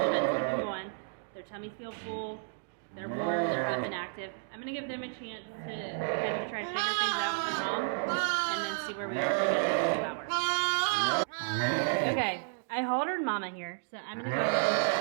bit to keep going. Their tummies feel full. They're warm. They're up and active. I'm gonna give them a chance to kind of try to figure things out with their mom, and then see where we are in 2 hours. Okay, I haltered Mama here, so I'm gonna go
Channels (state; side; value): silent; left; digital silence